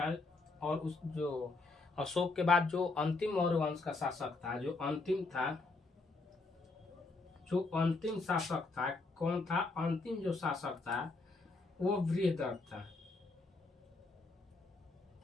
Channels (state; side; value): quieter; right; 3.6 dB